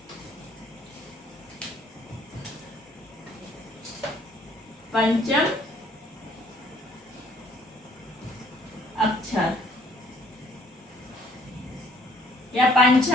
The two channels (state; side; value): normal; both; correlation 0.61